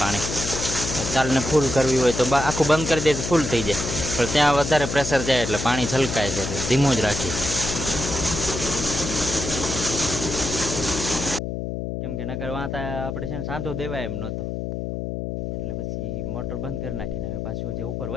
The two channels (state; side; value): noise; left; hum, 4 dB below the sound